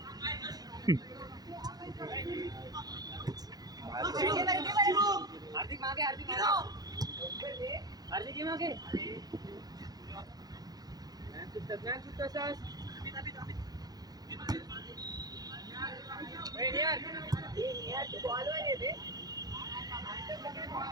हार्दिक मागे हार्दिक हार्दिक मागे ज्ञान सुद्धा सास वेळ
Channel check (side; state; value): left; late; 0.19 ms